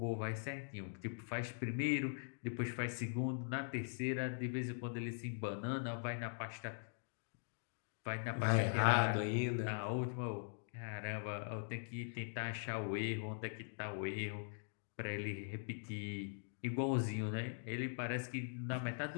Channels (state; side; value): silent; right; digital silence